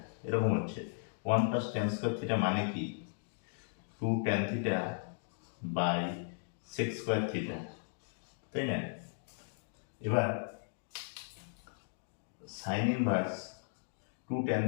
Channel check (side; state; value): right; silent; digital silence